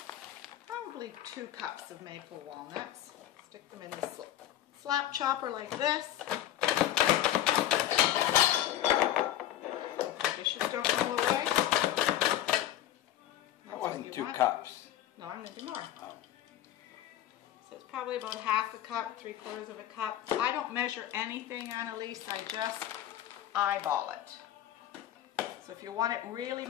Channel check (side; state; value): right; quieter; 12.5 dB